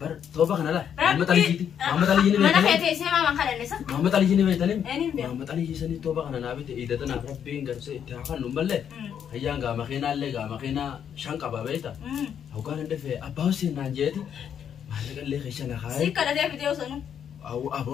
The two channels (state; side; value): quieter; right; 8.6 dB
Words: Bar tooba kana laa. Muhammad Rabbi. Ali jiiti. Muhammad Ali jiini Mana beekanii. feetee seemaa man kadhannisa. Muhammad Ali jiini beekanii. Eenyuun beeku. Muhammad Ali jiisanii tooba kana naa bite idatana rabbiin garsee itti haa kannu malee. Hayyaan gaa makiinaallee gaa makiinaa shan qaba beekta. Hawgaan hin dhufee abbaa Hussein naan jeeti. Maallaqallee keessa na kaayee. Si kadhatee fidee osoo